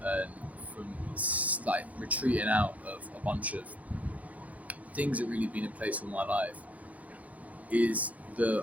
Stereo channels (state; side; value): late; left; 0.071 ms